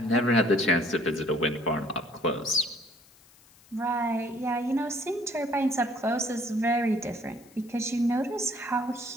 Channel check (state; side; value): noise; left; hiss, 27 dB below the sound